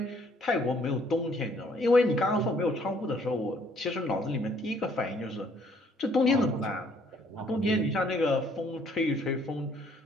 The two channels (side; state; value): both; normal; correlation 0.63